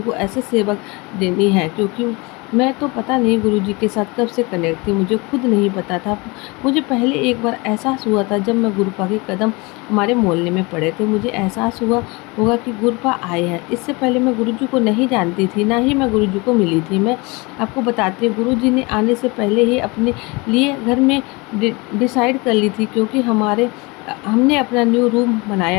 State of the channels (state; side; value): quieter; right; 26.4 dB